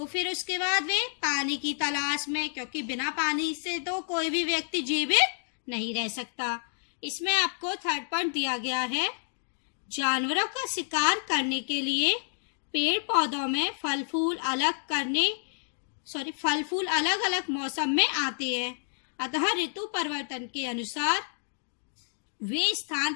फिर उसके बाद वे पानी की तलाश में, क्योंकि बिना पानी से तो कोई भी व्यक्ति जीवित नहीं रह सकता। इसमें आपको थर्ड पॉइंट दिया गया है, जानवरों का शिकार करने के लिए पेड़ पौधों में फल फूल अलग अलग मौसम में आते हैं, अतः ऋतु परिवर्तन के अनुसार वे स्थान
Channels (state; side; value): silent; right; digital silence